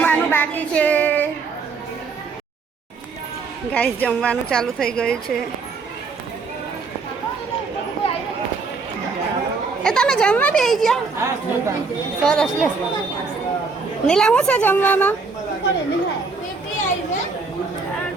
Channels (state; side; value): quieter; left; 4.5 dB